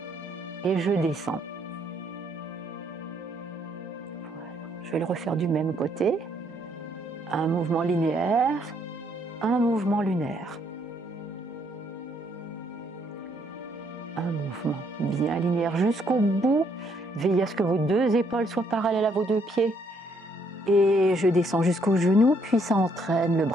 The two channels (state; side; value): normal; both; correlation 0.70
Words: et je descends. Voilà. Je vais le refaire du même côté, un mouvement linéaire, un mouvement lunaire. Un mouvement bien linéaire jusqu'au bout, veillez à ce que vos deux épaules soient parallèles à vos deux pieds. Et je descends jusqu'au genou, puis ça entraîne le